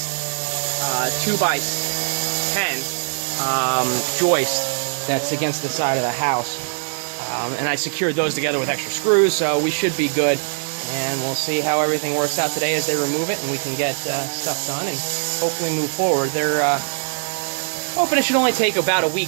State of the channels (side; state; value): left; silent; digital silence